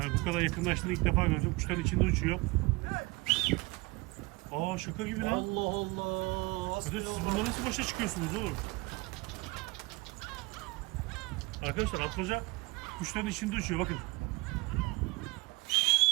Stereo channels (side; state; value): left; quieter; 23.8 dB